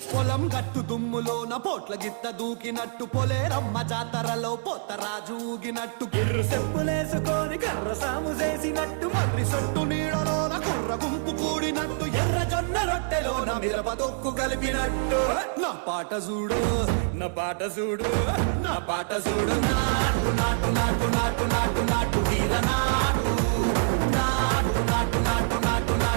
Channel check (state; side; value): silent; left; 61 dB below the other